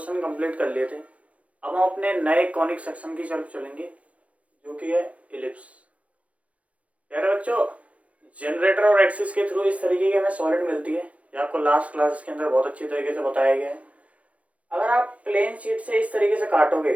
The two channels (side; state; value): left; late; 0.065 ms